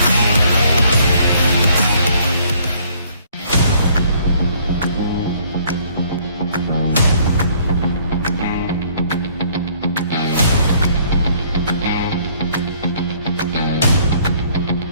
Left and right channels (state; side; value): inverted; both; correlation -0.61